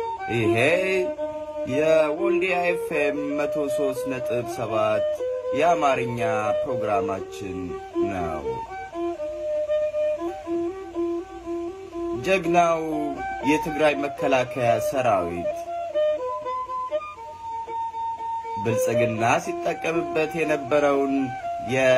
ይሄ የወልዲያ ኤፍኤም 103.7 የአማርኛ ፕሮግራማችን ነው። ጀግናው የትግራይ መከላከያ ሰራዊት ብልጽግና ሲጠቀምበት የነበረውን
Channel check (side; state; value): both; identical; correlation 1.00